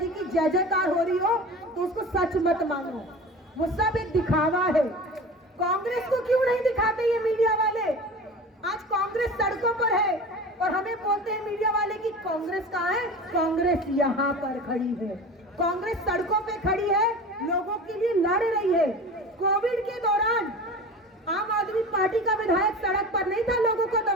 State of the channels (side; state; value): both; normal; correlation 0.35